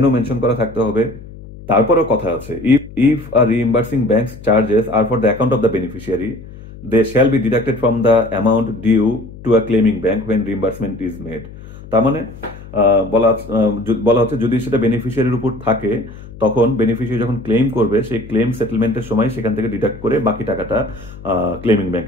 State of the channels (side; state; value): left; noise; hum, 16 dB below the sound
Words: মেনশন করা থাকতে হবে। তারপরেও কথা আছে, if a reimbursing bank's charges are for the account of the beneficiary, they shall be deducted from the amount due to a claiming bank when reimbursement is made. তার মানে বলা হচ্ছে যদি সেটা বেনিফিশিয়ারির উপর থাকে, তখন বেনিফিশিয়ারি যখন ক্লেম করবে সেই ক্লেম সেটেলমেন্টের সময় সেখান থেকে ডিডাক্ট করে বাকি টাকাটা ক্লেমিং